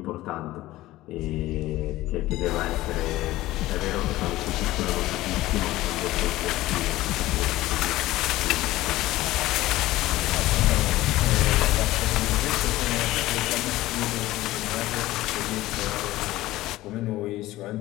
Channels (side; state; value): right; quieter; 16.9 dB